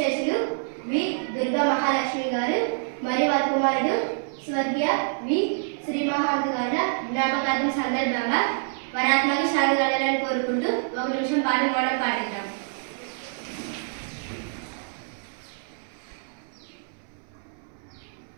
వి దుర్గా మహాలక్ష్మి గారు మరియు వారి కుమారుడు స్వర్గీయ వి శ్రీమహాంత్ గారి జ్ఞాపకార్థం సందర్భంగా వరాత్మకి శాంతి కలగాలని కోరుకుంటూ ఒక నిమిషం పాట మనం పాటిద్దాం.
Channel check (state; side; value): silent; left; 61 dB below the other